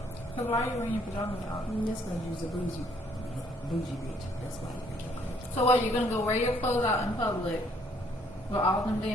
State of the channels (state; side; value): normal; both; correlation 0.65